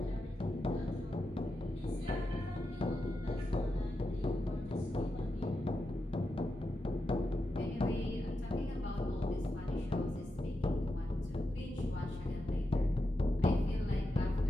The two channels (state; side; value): normal; both; correlation 0.87